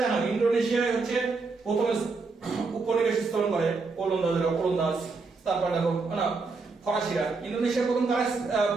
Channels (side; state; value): left; quieter; 4.2 dB